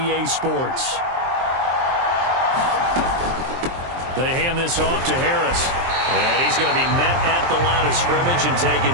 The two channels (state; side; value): late; left; 23 ms